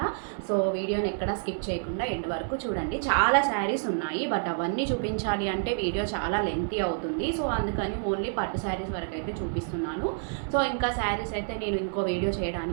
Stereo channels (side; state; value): left; silent; 57 dB below the other